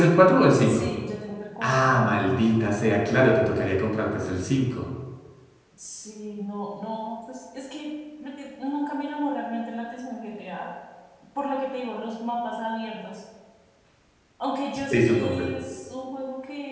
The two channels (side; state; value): both; identical; correlation 1.00